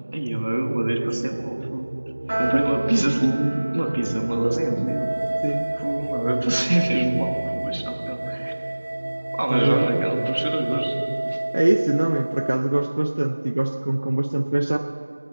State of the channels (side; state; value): both; inverted; correlation -1.00